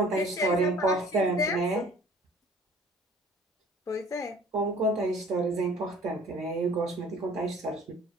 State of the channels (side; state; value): both; normal; correlation 0.51